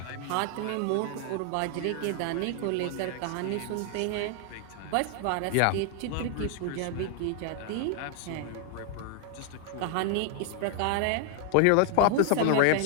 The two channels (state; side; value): different; both; correlation 0.00